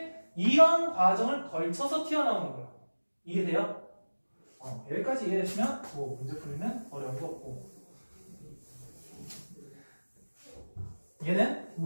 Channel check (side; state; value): both; inverted; correlation -1.00